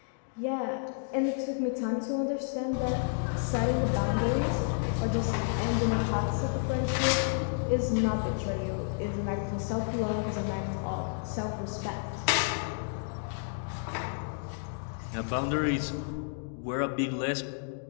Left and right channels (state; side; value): silent; right; digital silence